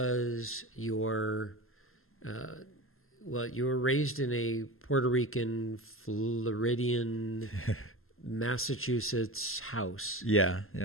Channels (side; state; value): right; late; 0.61 ms